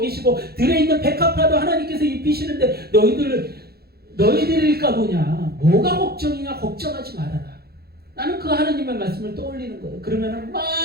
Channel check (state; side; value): late; left; 0.46 ms